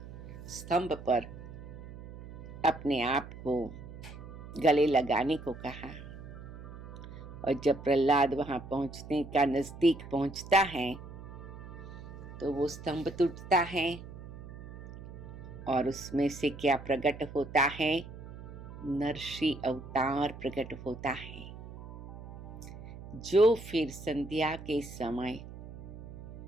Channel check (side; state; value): right; noise; hum, 13 dB below the sound